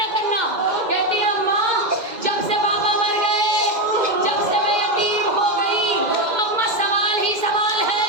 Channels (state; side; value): late; left; 2.0 ms